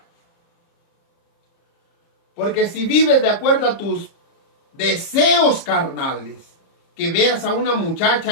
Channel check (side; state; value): right; late; 30 ms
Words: Porque si vives de acuerdo a tus deseos carnales, que veas a una